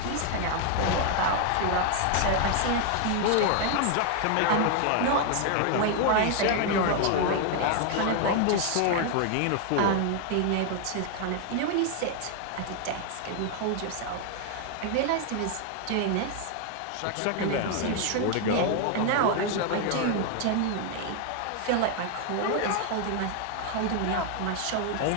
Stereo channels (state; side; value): different; both; correlation 0.00